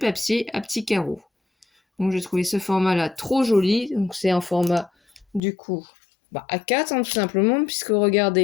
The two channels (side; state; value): right; drops out; at 5.4 s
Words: à petits carreaux. Donc j'ai trouvé ce format-là trop joli. Donc c'est un format du coup A4 tout simplement, puisque